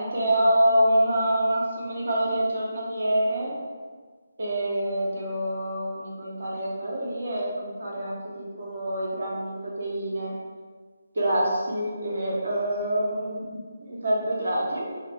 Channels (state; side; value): inverted; both; correlation -0.86